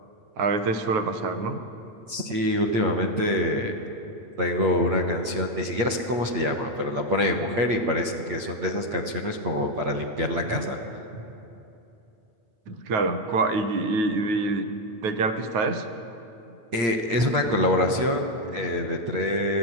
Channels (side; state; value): left; late; 8.6 ms